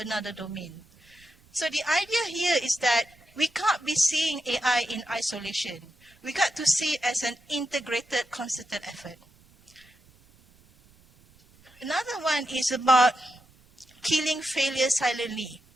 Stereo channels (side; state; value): right; noise; rumble, 29 dB below the sound